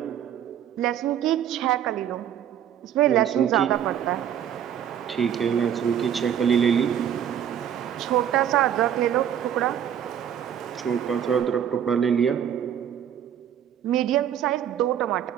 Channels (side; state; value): left; quieter; 9.5 dB